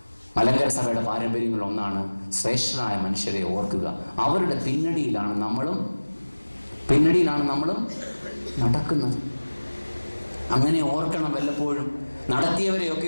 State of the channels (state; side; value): inverted; both; correlation -1.00